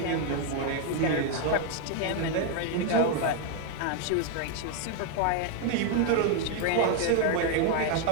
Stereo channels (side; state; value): both; different; correlation 0.00